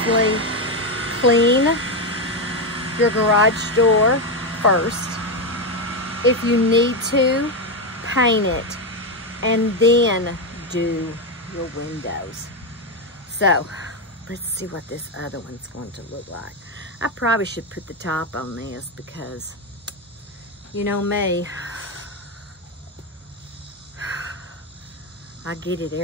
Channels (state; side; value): normal; both; correlation 0.08